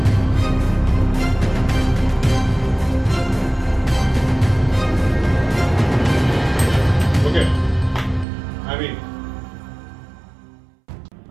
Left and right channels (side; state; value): left; drops out; at 8.2 s